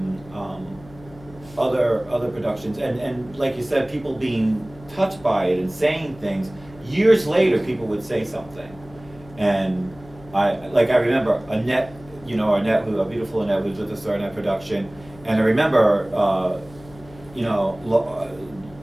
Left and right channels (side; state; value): left; noise; hum, 21 dB below the sound